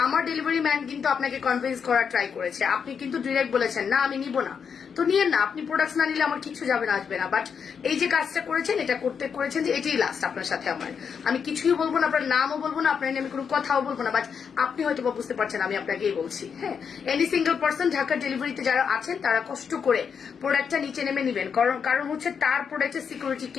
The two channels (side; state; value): right; quieter; 6.7 dB